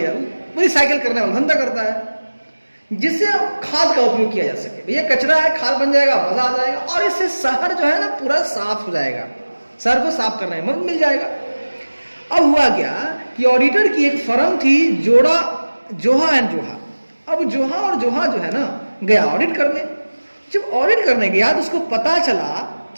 वो रिसाइकिल करने वाला धंधा करता है, जिससे खाद का उपयोग किया जा सके। भैया कचरा है, खाद बन जाएगा, मजा आ जाएगा, और इससे शहर जो है ना पूरा साफ हो जाएगा, शहर को साफ करने में मदद मिल जाएगा। अब हुआ क्या कि ऑडिटर की एक फर्म थी, जोहा एंड जोहा। अब जोहा और जोहा जो है ना गया ऑडिट करने। जब ऑडिट करने गया तो उसको पता चला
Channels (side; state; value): both; inverted; correlation -1.00